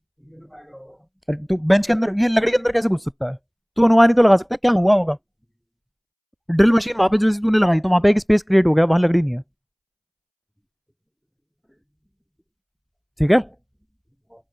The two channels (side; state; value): both; identical; correlation 1.00